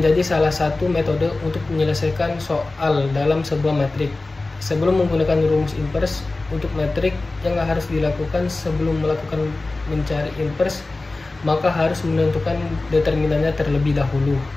salah satu metode untuk menyelesaikan soal dalam sebuah metrik. Sebelum menggunakan rumus inverse untuk metrik, yang harus dilakukan sebelum melakukan mencari inverse, maka harus menentukan determinannya terlebih dahulu.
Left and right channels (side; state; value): right; quieter; 3.2 dB